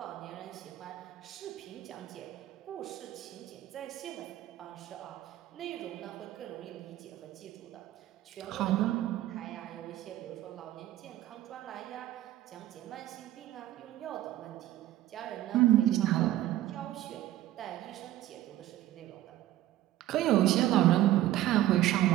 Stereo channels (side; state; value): left; quieter; 14.5 dB